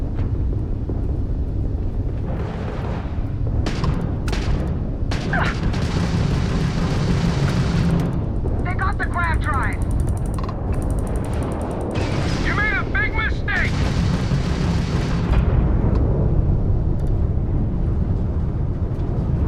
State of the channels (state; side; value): identical; both; correlation 1.00